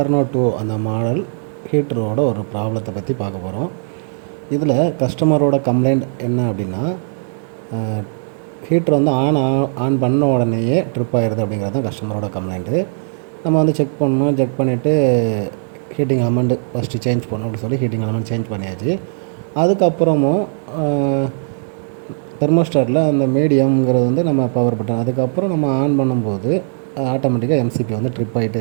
2 அந்த மாடல் ஹீட்டரோட ஒரு ப்ராப்ளத்தை பற்றி பார்க்க போகிறோம். இதில் கஸ்டமரோட கம்ப்ளைண்ட் என்ன அப்படின்னா, ஹீட்ரு ஆன் பண்ண உடனேயே ட்ரிப் ஆகிடுது அப்படிங்கிறது தான் கஸ்டமரோட கம்ப்ளைண்ட்டு. நம்ம செக் பண்ணணும். செக் பண்ணிவிட்டு ஹீட்டிங் எலமெண்ட் ஃபஸ்ட்டு சேஞ்ச் பண்ணணும் அப்படின்னு சொல்லி ஹீட்டிங் எலமெண்ட் சேஞ்ச் பண்ணியாச்சு. அதுக்கப்புறமும் தெர்மோஸ்டாட்டில் அந்த மீடியம்ங்கிறது நம்ம பவர் பட்டன் அதுக்கப்புறம் நம்ம ஆன் பண்ணும்போது ஆட்டோமேட்டிக்காக எம்சிபி ட்ரிப்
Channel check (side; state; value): left; silent; digital silence